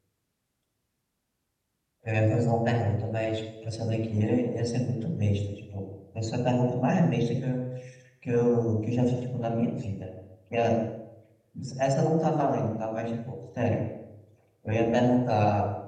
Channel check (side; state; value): both; identical; correlation 1.00